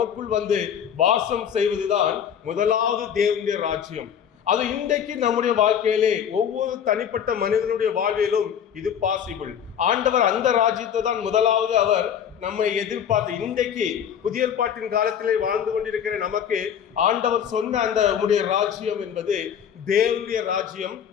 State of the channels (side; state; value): right; quieter; 8.5 dB